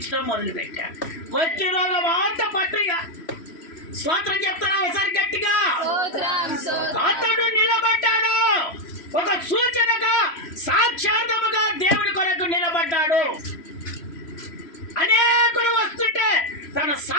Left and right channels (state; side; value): late; right; 3.0 ms